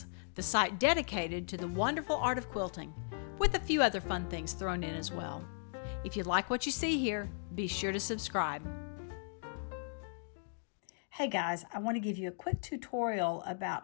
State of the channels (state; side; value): silent; right; digital silence